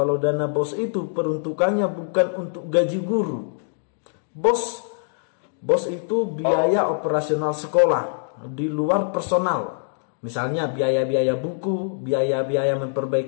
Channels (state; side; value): silent; right; digital silence